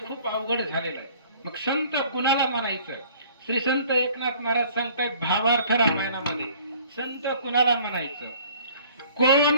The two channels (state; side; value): inverted; both; correlation -0.53